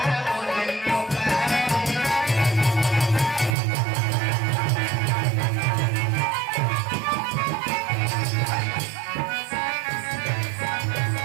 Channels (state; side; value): drops out; left; at 3.6 s